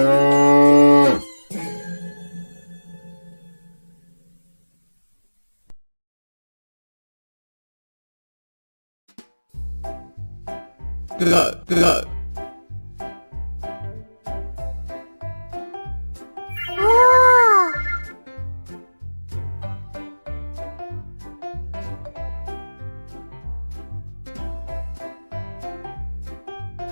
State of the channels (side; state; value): both; inverted; correlation -1.00